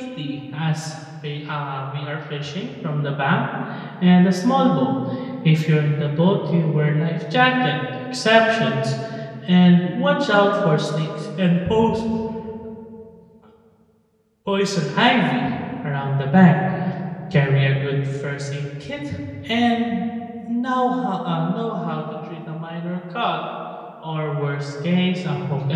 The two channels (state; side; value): identical; both; correlation 1.00